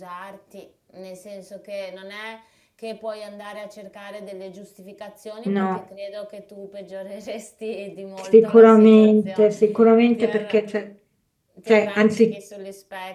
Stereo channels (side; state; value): both; identical; correlation 1.00